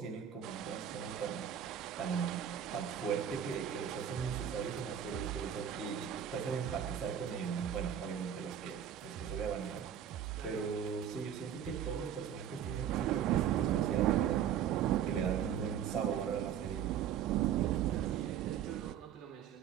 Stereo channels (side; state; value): left; quieter; 9.2 dB